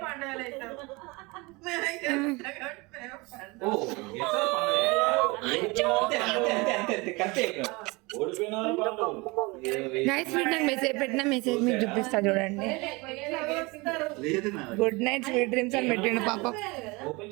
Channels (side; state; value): left; quieter; 25.3 dB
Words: పండుగలు అవుతాం ఓ ఓడిపోయిన నైట్ స్వీట్ నాకు మెసేజ్ పెట్టిన మెసేజ్ మీకు చూపిస్తా చూడండి. లేదు నా గుడ్ నైట్ స్వీట్ డ్రీమ్స్ అని పెట్టిండు పాపం.